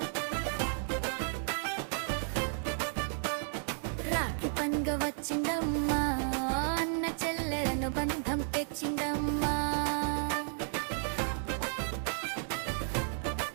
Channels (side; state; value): left; silent; digital silence